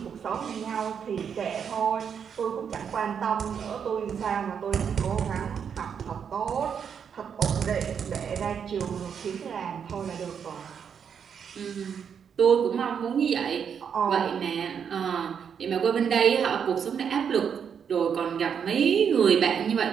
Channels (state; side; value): quieter; left; 7.3 dB